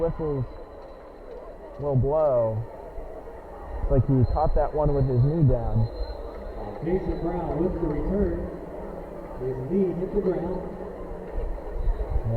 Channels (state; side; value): identical; both; correlation 1.00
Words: will blow. Looks like he caught that one with his knee down. Jason Brown with the return. His knee hit the ground